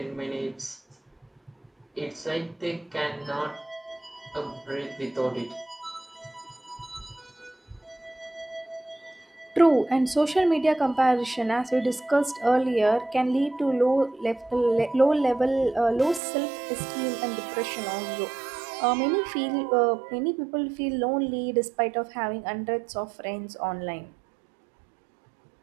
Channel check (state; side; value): drops out; left; at 16.2 s